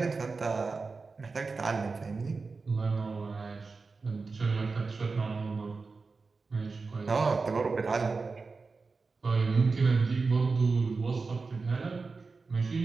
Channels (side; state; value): left; quieter; 4.2 dB